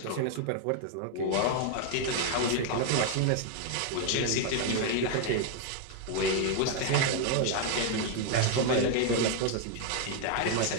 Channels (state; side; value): different; both; correlation 0.00